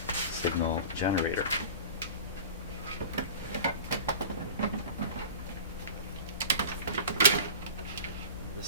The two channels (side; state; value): both; inverted; correlation -0.35